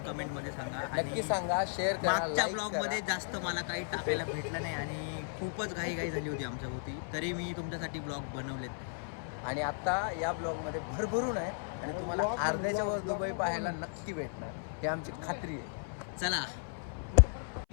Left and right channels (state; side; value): silent; right; 55 dB below the other